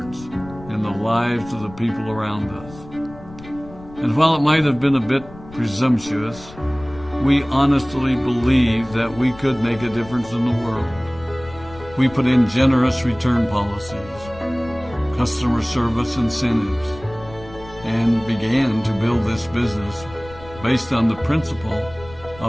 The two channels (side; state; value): left; noise; rumble, 18 dB below the sound